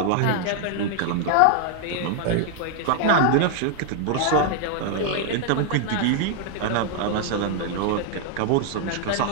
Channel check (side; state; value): both; different; correlation 0.00